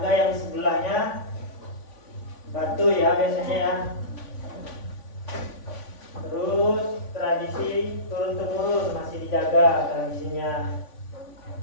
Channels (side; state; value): right; late; 3.5 ms